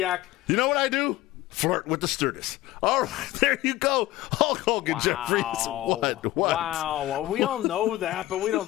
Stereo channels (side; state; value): right; quieter; 16.4 dB